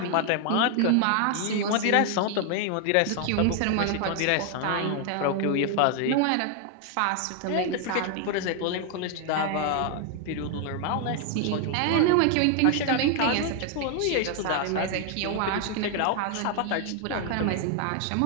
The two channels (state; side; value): different; both; correlation 0.00